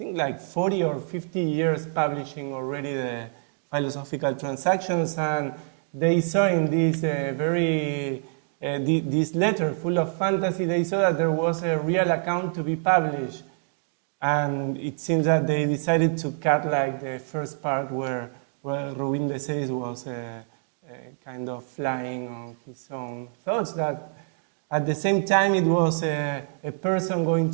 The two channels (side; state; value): left; silent; 61 dB below the other